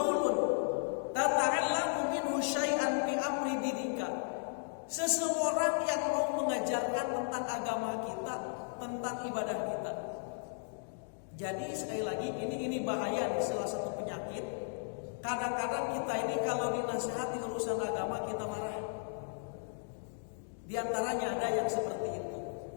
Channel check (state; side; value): silent; right; digital silence